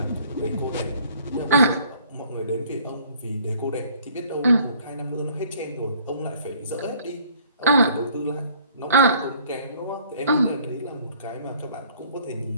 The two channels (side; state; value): both; inverted; correlation -0.57